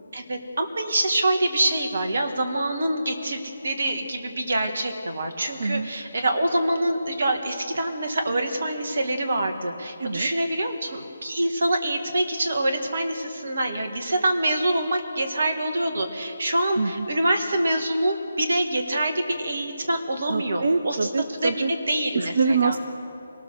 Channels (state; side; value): inverted; both; correlation -0.88